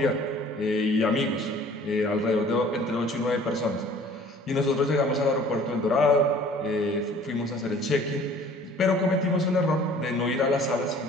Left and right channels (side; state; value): both; normal; correlation 0.51